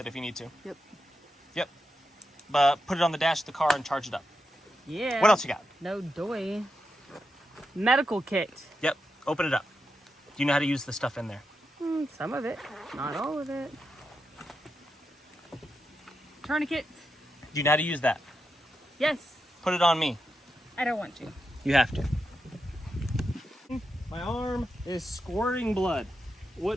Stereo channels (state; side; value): normal; both; correlation 0.87